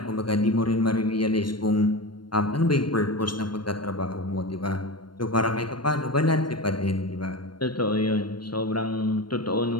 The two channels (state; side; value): late; right; 0.72 ms